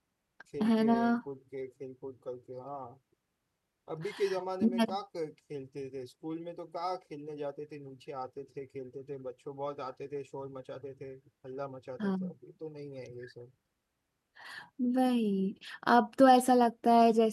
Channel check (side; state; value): both; identical; correlation 1.00